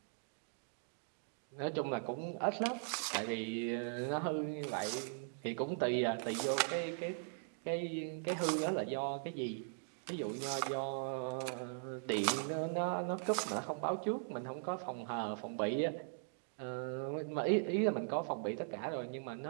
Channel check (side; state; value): left; silent; digital silence